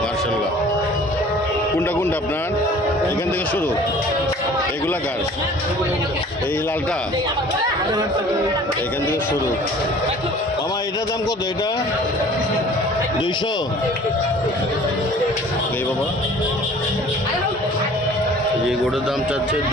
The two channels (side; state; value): both; normal; correlation 0.48